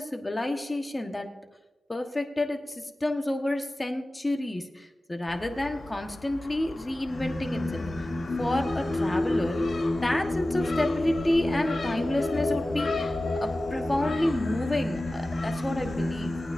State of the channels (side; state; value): both; normal; correlation 0.96